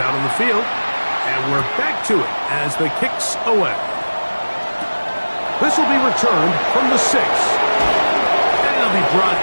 on the field. And we're back to it as the kick's away. This will be returned from the 6. Be brought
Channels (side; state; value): both; inverted; correlation -1.00